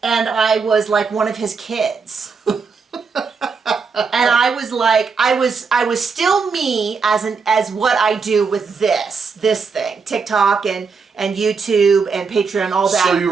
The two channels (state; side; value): quieter; left; 5.1 dB